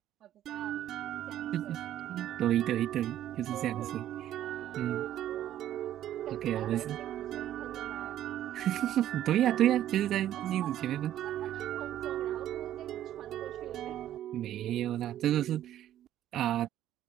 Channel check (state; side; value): quieter; left; 12.0 dB